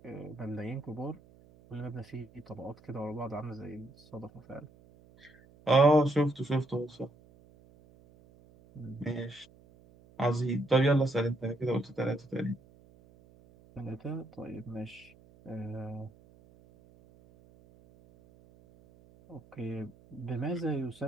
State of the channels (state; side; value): noise; right; hum, 26 dB below the sound